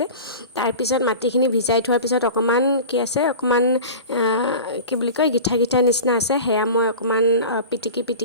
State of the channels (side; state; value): both; inverted; correlation -0.34